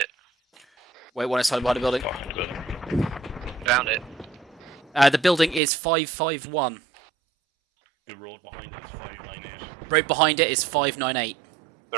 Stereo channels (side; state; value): left; drops out; at 5.6 s